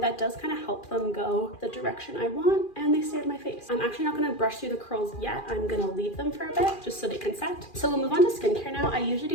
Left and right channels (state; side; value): late; right; 2.4 ms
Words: that does kind of help them go the direction I want, and they stay on my face. I'm actually not going to brush through the curls yet. I'm going to leave them for a bit just so they can set. So we'll move on to skincare now. I usually